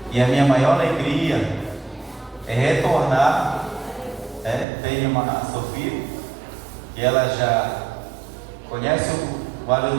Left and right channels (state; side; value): drops out; left; at 4.7 s